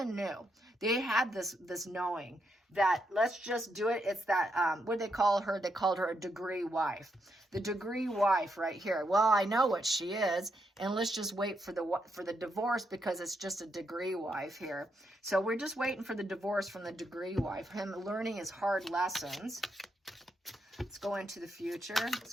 knew. They had this knowing that let's just do it. It's that, what did they call her? They called her a degree wife. The degree wife right here. Well, I know what she is, and let's just wait for the divorce because it's just a degree wife here. So we're just waiting for the divorce from the degree wife. Him learning his hard lessons. Let's go into the future. Let's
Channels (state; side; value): normal; both; correlation 0.80